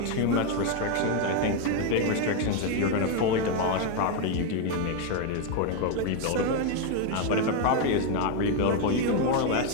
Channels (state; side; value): different; both; correlation 0.02